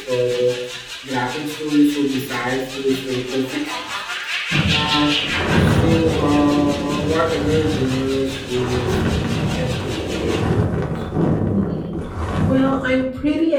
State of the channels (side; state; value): both; identical; correlation 1.00